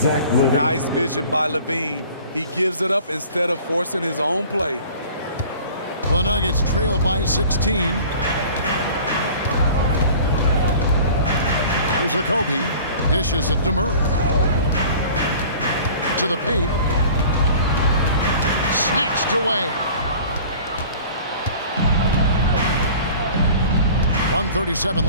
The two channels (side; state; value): both; inverted; correlation -0.45